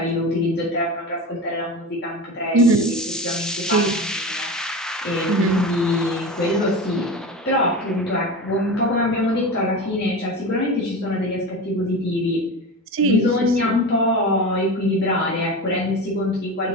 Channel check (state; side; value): normal; both; correlation 0.27